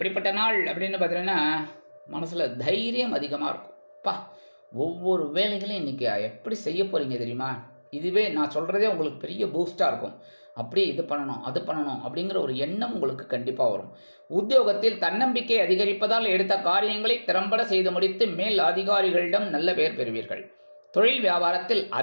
நாள் அப்படின்னு பார்த்தீங்கன்னா, மனசுல தைரியம் அதிகமா இருக்கும். ஒவ்வொரு வேலைகளையும் இன்னைக்கு எப்படி செய்ய போறீங்க தெரியுமா? இதுவே நான் சொல்றதே உங்களுக்கு பெரிய பூஸ்டா இருக்கும். அப்படி இது பண்ணணும் அது பண்ணணும் அப்படிங்கிற ஒரு எண்ணம் உங்களுக்கு கண்டிப்பா வரும். உத்தியோகத்தில் தன்னம்பிக்கை அதிகரிப்பதால் எடுத்த காரியங்களை திறம்பட செய்து முடித்து மேல் அதிகாரிகளிடம் நல்ல பெயர் பெறுவீர்கள். தொழில் வியாபாரத்தில்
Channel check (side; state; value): both; inverted; correlation -1.00